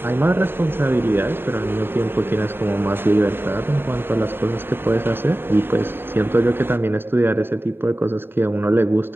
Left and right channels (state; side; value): late; left; 0.11 ms